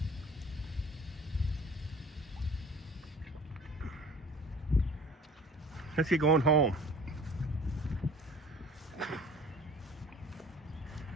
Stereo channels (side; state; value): both; normal; correlation 0.47